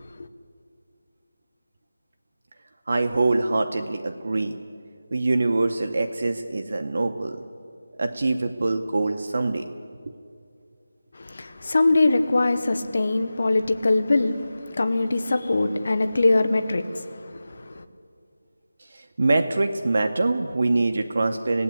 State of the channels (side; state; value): both; inverted; correlation -0.94